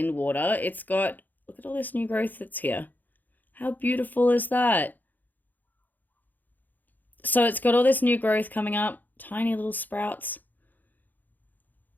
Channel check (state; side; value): late; right; 0.085 ms